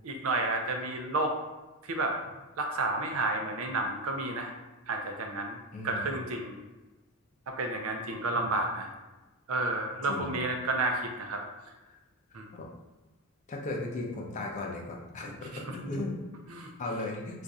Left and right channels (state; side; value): normal; both; correlation 0.13